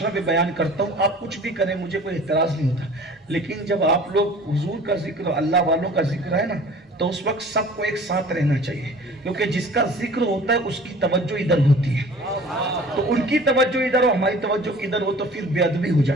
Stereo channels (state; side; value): normal; both; correlation 0.46